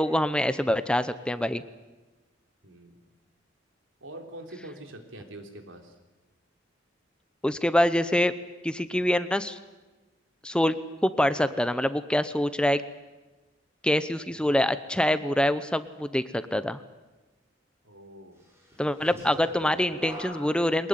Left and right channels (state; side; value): normal; both; correlation 0.88